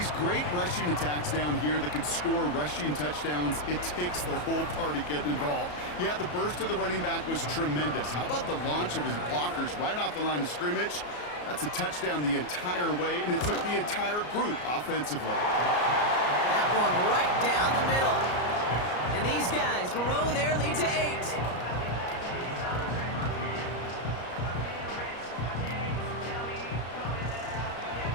great rushing attacks down here that could score rushing touchdowns, it takes the whole party getting involved. Yeah, the burst of the running back was tremendous. How about the launch of his blockers right off the line of scrimmage? That's a touchdown the entire way, and it took the entire group offensively. That one right down the middle. And these guys grow their lead to 8.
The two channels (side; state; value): right; late; 34 ms